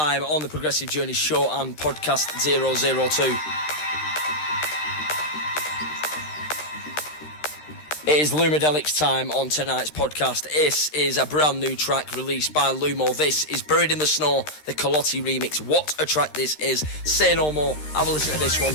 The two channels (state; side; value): late; right; 13 ms